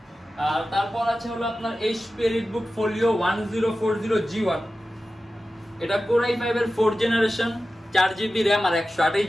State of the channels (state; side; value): normal; both; correlation 0.94